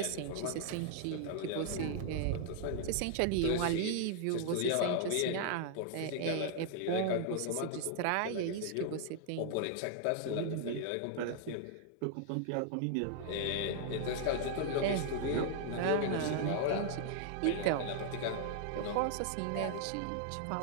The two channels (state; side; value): different; both; correlation -0.01